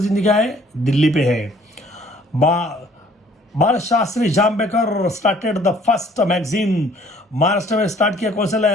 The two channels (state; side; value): normal; both; correlation 0.58